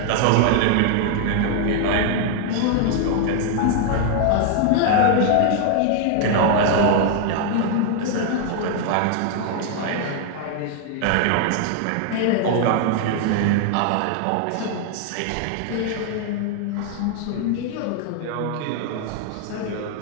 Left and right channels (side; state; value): both; different; correlation 0.00